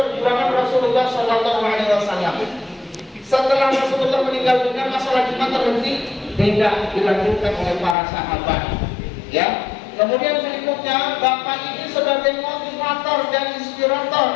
Rasulullah SAW. Setelah Rasulullah meninggal dunia, masalah Jumat terhenti, tidak dilanjutkan oleh para sahabat. Ya. Kemudian berikutnya, Bapak ini sebagai motivator dan inspirator,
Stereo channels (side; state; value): right; drops out; at 8.0 s